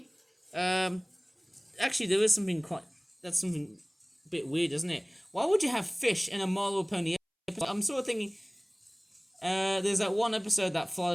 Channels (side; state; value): both; identical; correlation 1.00